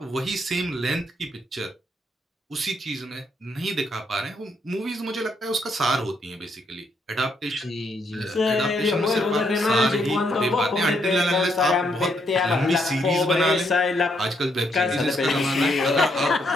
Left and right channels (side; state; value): both; normal; correlation 0.75